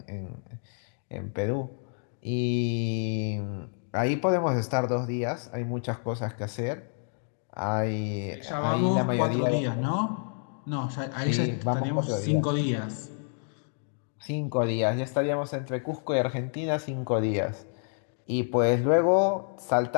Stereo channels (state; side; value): silent; right; 59 dB below the other